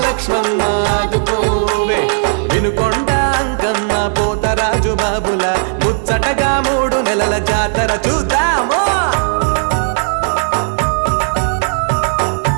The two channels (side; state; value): left; silent; digital silence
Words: ఆదుకోవే వినుకొండ అంకమ్మ పోతరాజు బాబుల ముచ్చటగా 3 నెలల జాతర చూద్దాము